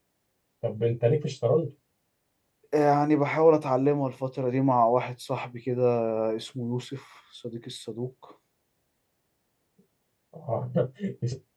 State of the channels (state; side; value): identical; both; correlation 1.00